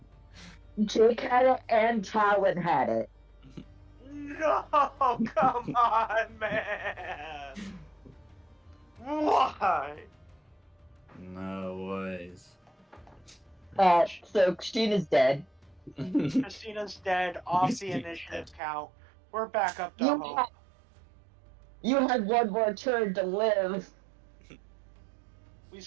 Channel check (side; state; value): left; drops out; at 18.6 s